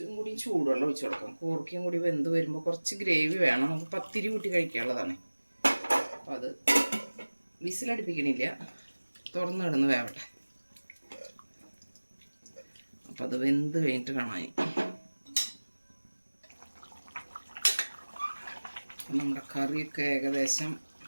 കൂടി ചൂടുവെള്ളം ഒഴിച്ചു കൊടുക്കാം. കോർക്കിയും കൂടി വെന്ത് വരുമ്പോൾ കുറച്ച് ഗ്രേവി വേണം. നമുക്ക് പത്തിരി കൂട്ടി കഴിക്കാനുള്ളതാണ്. അപ്പോൾ അത് വിസിലടുപ്പിക്കണില്ല, തുറന്ന് കിടന്ന് വേവട്ടെ. അപ്പം അത് വെന്ത് കഴിഞ്ഞിട്ട് കാണാൻ. നമ്മുടെ കറിയൊക്കെ ഏകദേശം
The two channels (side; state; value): both; inverted; correlation -1.00